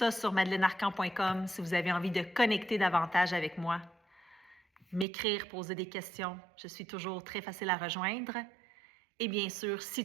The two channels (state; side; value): drops out; left; at 5.1 s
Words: sur madeleinearcan.com si vous avez envie de connecter davantage avec moi. M'écrire, poser des questions. Je suis toujours très facile à rejoindre. Et bien sûr,